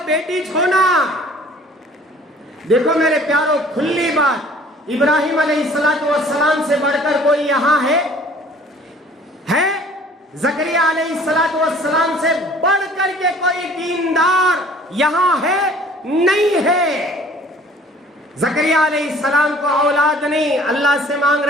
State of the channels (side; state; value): both; normal; correlation 0.52